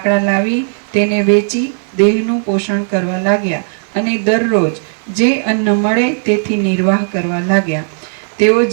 લાવી તેને વેચી દેહનું પોષણ કરવા લાગ્યા અને દરરોજ જે અન્ન મળે તેથી નિર્વાહ કરવા લાગ્યા. તેઓ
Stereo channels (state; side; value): silent; left; digital silence